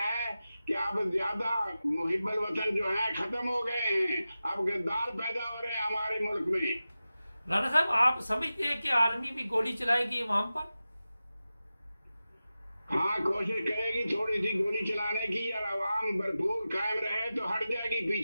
कि अब ज्यादा मुहिब्बुल वतन जो है खत्म हो गए हैं। अब गद्दार पैदा हो रहे हैं हमारे मुल्क में। राणा साहब, आप समझते हैं कि आर्मी भी गोली चलाएगी इमाम पर? हाँ, कोशिश करेगी थोड़ी सी गोली चलाने की और आवाम भरपूर कायम रहे तो हट जाएगी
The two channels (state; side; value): inverted; both; correlation -0.94